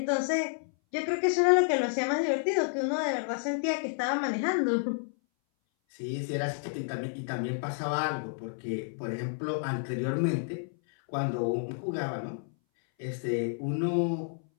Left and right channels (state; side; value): silent; right; 58 dB below the other